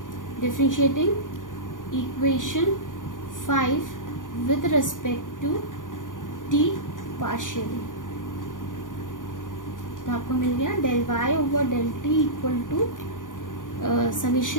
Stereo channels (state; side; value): late; right; 0.88 ms